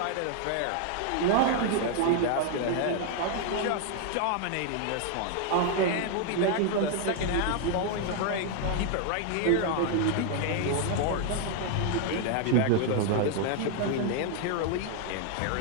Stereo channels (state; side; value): different; both; correlation 0.00